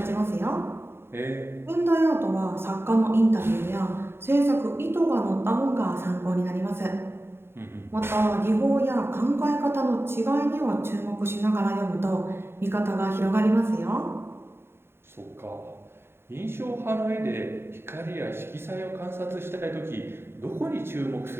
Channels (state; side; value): late; left; 0.11 ms